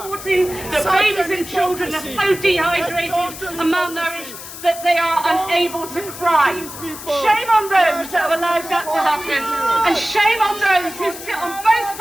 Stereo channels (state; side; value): noise; left; hiss, 12 dB below the sound